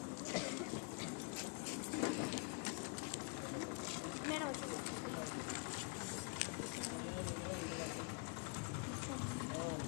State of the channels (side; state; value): right; quieter; 34.8 dB